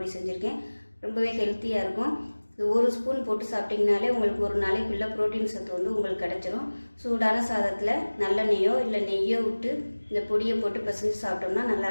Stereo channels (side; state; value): both; inverted; correlation -1.00